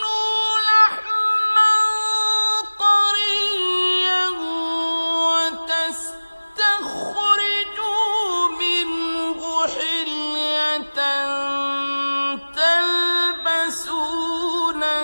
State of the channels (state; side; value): inverted; both; correlation -1.00